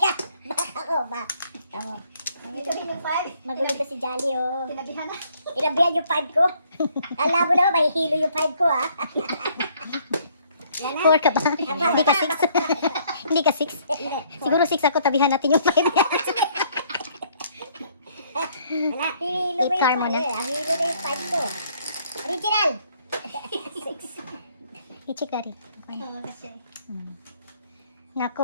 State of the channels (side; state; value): both; inverted; correlation -0.64